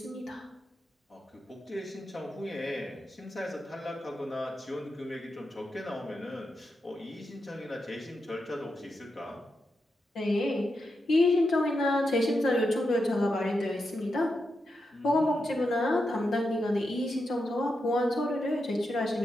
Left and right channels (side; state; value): both; normal; correlation 0.86